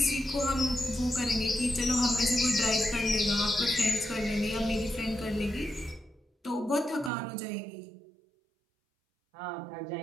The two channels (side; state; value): left; drops out; at 7.1 s